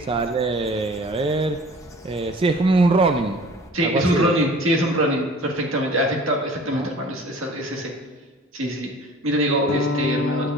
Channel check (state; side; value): normal; both; correlation 0.46